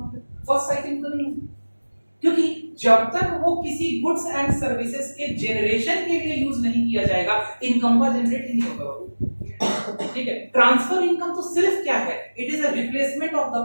है, फर्स्ट साइकिल तो नहीं, क्योंकि जब तक वो किसी गुड्स एंड सर्विसेज के जनरेशन के लिए यूज नहीं किया जाएगा इनकम का जनरेट ही नहीं होगा। ठीक है, ट्रांसफर इनकम तो सिर्फ क्या है, it is a replacement of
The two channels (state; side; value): inverted; both; correlation -1.00